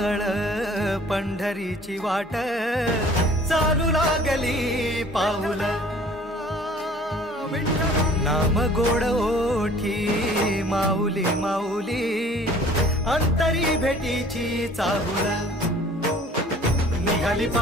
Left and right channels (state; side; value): normal; both; correlation 0.51